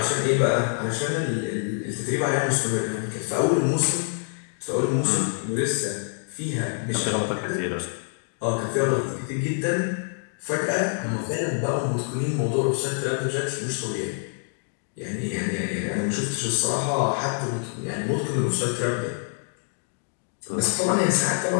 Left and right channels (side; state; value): right; silent; 61 dB below the other